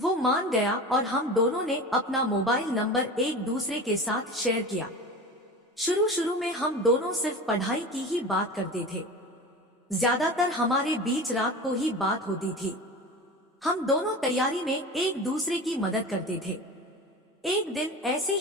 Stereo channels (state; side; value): normal; both; correlation 0.32